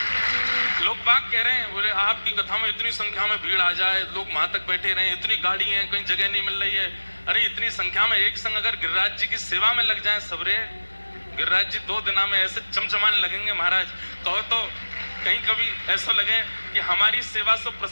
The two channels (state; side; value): inverted; both; correlation -1.00